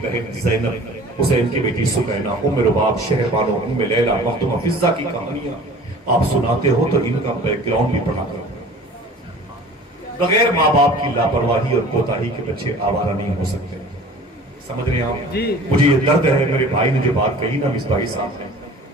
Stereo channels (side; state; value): both; normal; correlation 0.44